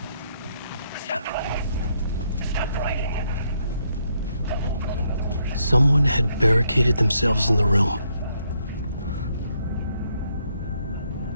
Stop running. Stop writing. Someone had barricaded themselves in the room.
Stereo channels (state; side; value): inverted; both; correlation -0.75